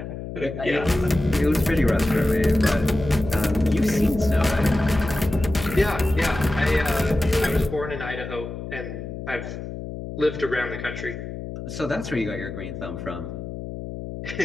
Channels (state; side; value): noise; left; hum, 8 dB below the sound